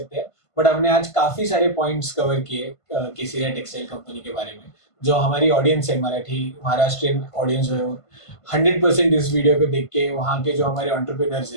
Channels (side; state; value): right; late; 1.5 ms